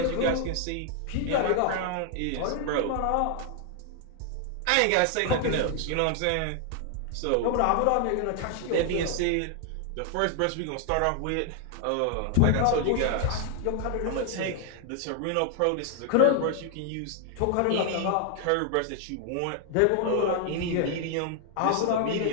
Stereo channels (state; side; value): different; both; correlation 0.00